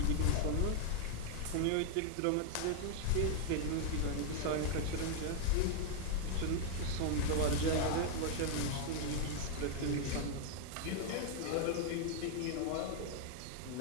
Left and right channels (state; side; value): different; both; correlation 0.00